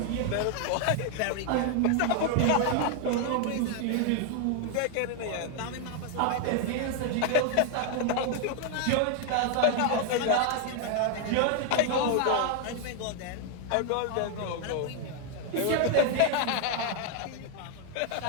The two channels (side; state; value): both; different; correlation 0.00